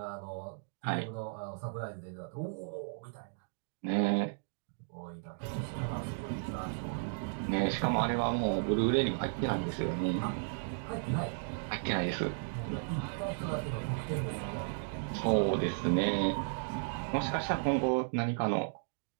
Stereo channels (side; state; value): left; silent; digital silence